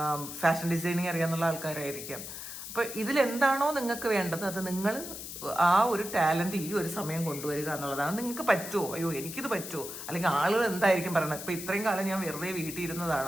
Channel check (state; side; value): noise; left; hiss, 9 dB below the sound